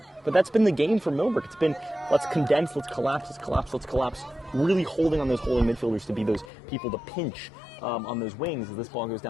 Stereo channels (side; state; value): right; drops out; at 6.5 s